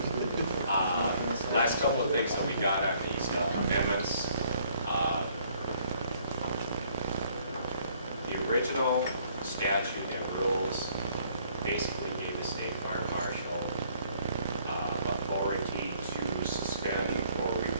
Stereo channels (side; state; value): both; inverted; correlation -0.63